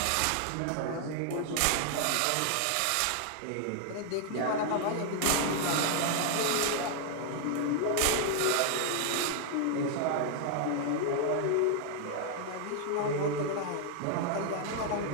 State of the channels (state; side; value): different; both; correlation 0.00